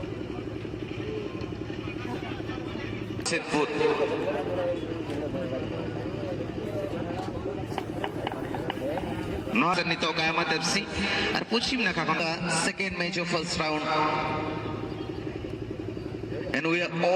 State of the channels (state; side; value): identical; both; correlation 1.00